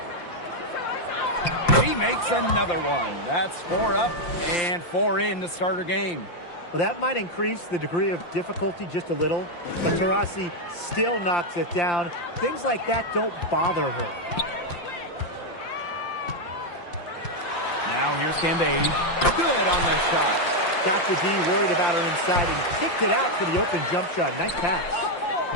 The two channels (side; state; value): right; late; 5.8 ms